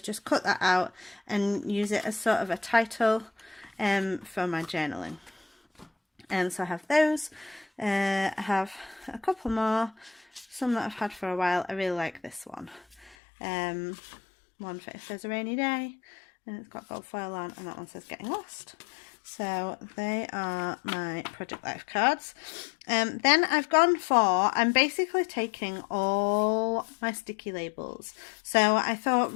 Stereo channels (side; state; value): right; drops out; at 13.2 s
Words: just cut that out and use it as sort of a title for my journaling. And so I have those. I have a couple more, some that I've had for a while. I really like this one. One for if there's a rainy day, and it's got gold foil on, and that one says Getting Lost. So they are my Project Life cards. Then I've gone for, I'm basically taking all my sticky labels. So I thought